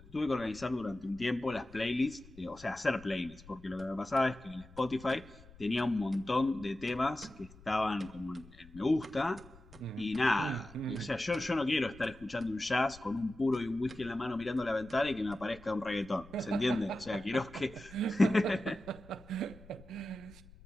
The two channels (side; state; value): left; noise; rumble, 21 dB below the sound